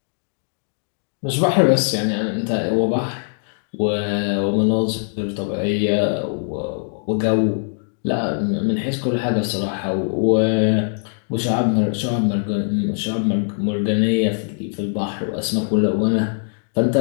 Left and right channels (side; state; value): right; silent; digital silence